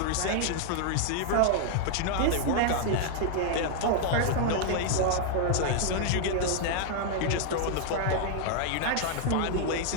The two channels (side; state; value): both; different; correlation -0.01